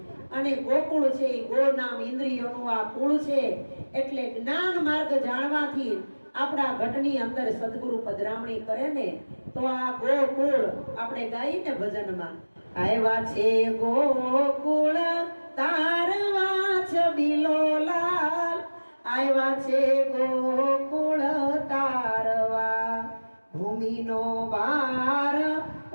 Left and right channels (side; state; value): both; inverted; correlation -1.00